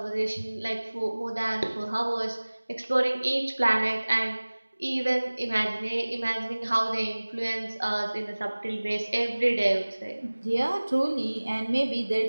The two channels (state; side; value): inverted; both; correlation -1.00